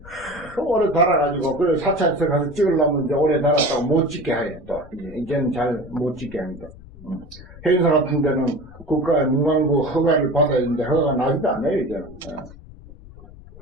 오래 달아가지고 그래 사찰에서 가서 찍으려면 이제 오래 달았다고 못 찍게 해. 또 이제는 잘 못 찍게 합니다. 해인사 같은 데는 국가 문광부 허가를 받아야 되는데 허가가 나지도 않아요 이제는.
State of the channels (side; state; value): left; noise; rumble, 19 dB below the sound